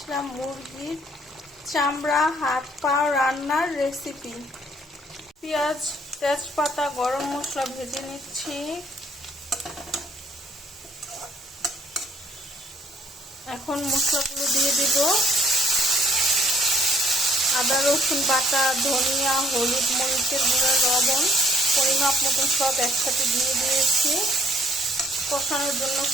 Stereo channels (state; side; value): normal; both; correlation 0.63